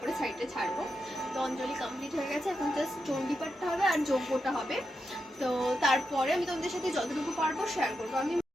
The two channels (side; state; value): both; normal; correlation 0.87